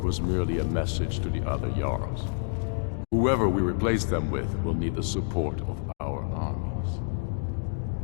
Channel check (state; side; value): silent; right; digital silence